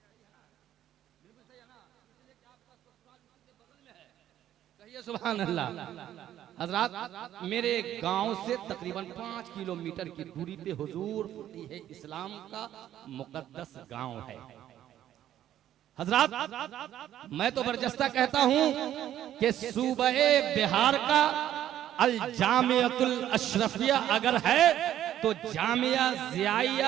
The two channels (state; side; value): quieter; left; 11.8 dB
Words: कहिए सुभान अल्लाह। हजरात, मेरे गांव से तकरीबन 5 किलोमीटर की दूरी पे हुजूर फकीह इस्लाम का मुकद्दस गांव है। हजरात, मैं तो बरजस्ता कहता हूं कि सूबे बिहार का अल जामियातुल अशरफिया अगर है तो जामिया